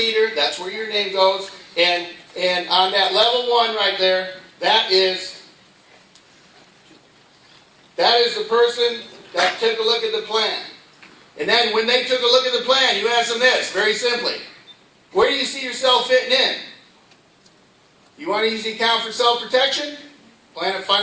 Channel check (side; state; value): both; identical; correlation 1.00